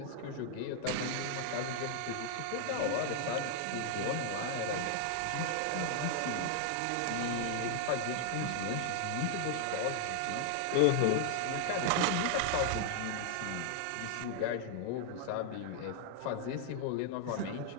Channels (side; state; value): both; different; correlation 0.00